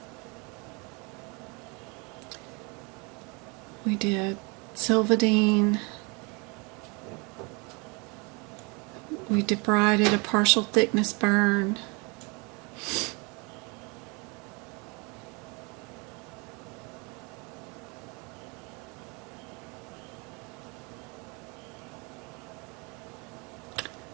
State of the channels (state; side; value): quieter; left; 30.0 dB